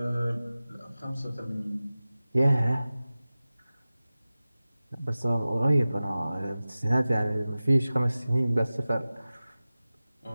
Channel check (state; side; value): inverted; both; correlation -0.96